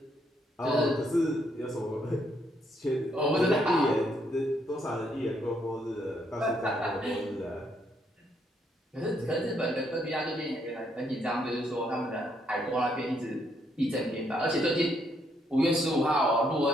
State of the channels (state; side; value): normal; both; correlation 0.73